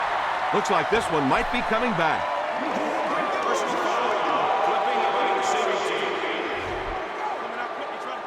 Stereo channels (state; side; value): identical; both; correlation 1.00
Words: Looks like this one might be coming back.